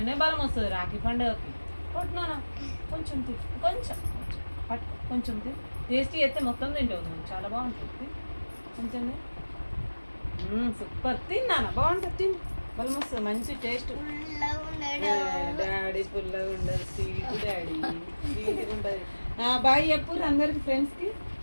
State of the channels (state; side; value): inverted; both; correlation -1.00